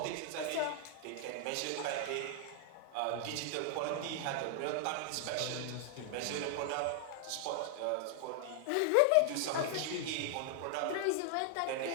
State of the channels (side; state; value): both; different; correlation 0.00